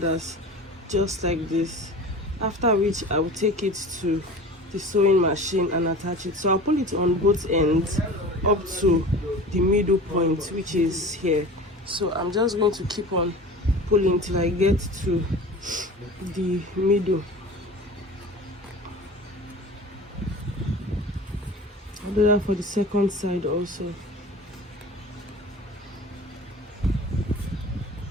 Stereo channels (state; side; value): normal; both; correlation 0.37